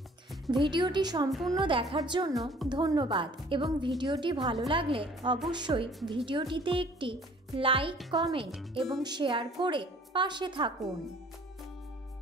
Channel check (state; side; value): normal; both; correlation 0.54